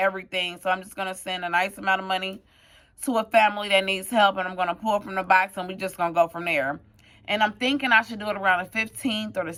So I'm just going to send a nice amount of money to a family that needs help, and I'm going to pull from the box, and we're just going to go from there. And I'm thinking I should do it around the 15th or the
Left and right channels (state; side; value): identical; both; correlation 1.00